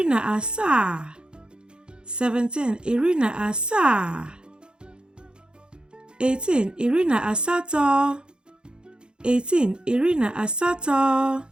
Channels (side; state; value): left; late; 0.050 ms